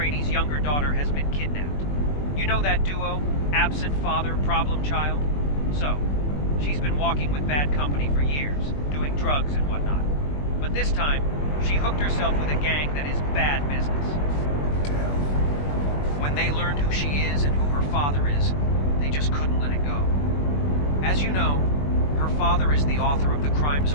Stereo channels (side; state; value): right; late; 21 ms